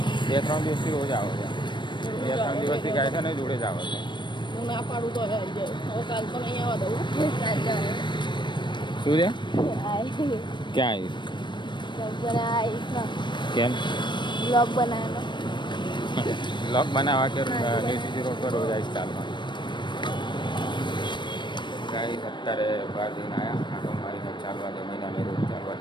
2-3 દિવસથી રોજ આવે છે. 2-3 દિવસથી ગાય છે ને જોડે જ આવે છે. હું ના પાડું તો હવે કાલ તો નહીં આવવા દઉં. શું છે? ક્યાં આવીશ? કેમ? બ્લોગ બનાવવાનો. બ્લોગ બનાવવા કે સીધી રોડ પર રોજ આવીશ ચાલવા. ગાય અત્યારે બહાર જઈને આવ્યા, આટો મારીને ચાલવા જમીને અમે રોજ ચાલવા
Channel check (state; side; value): late; right; 0.22 ms